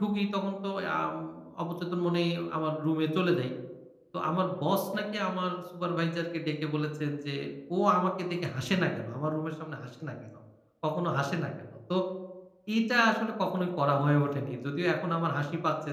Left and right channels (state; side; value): identical; both; correlation 1.00